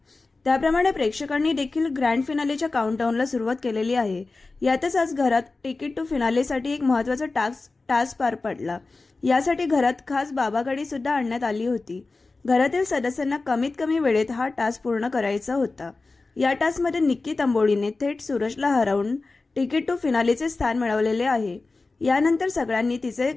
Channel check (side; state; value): right; quieter; 3.6 dB